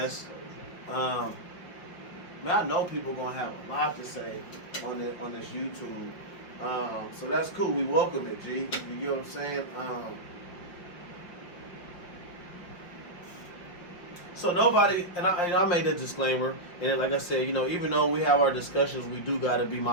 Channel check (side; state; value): right; late; 5.5 ms